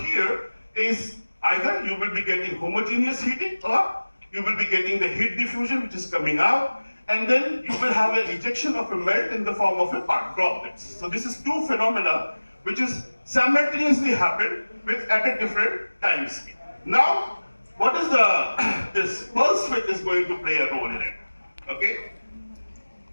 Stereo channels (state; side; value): inverted; both; correlation -1.00